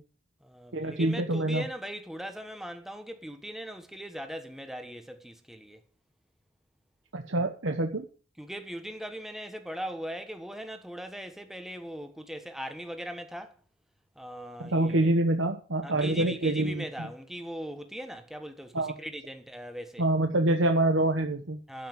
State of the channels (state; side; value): normal; both; correlation 0.34